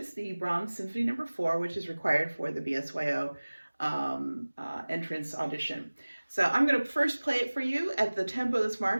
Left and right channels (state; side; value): inverted; both; correlation -1.00